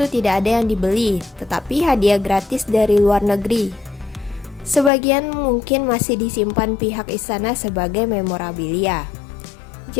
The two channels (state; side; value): drops out; right; at 4.9 s